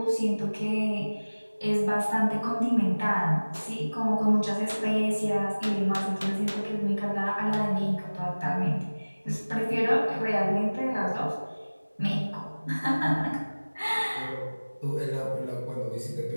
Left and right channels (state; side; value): inverted; both; correlation -1.00